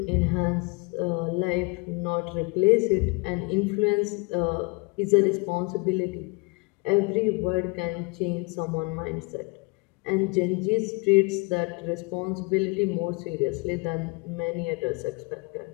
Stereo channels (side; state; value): right; quieter; 28.4 dB